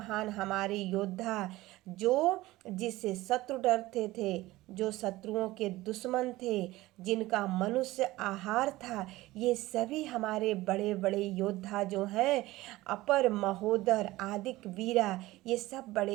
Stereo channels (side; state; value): left; quieter; 18.2 dB